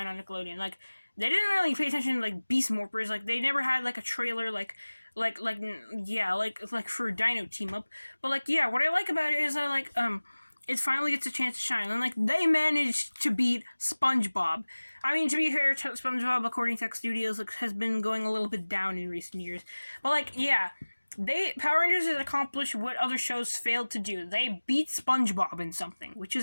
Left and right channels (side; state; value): both; inverted; correlation -1.00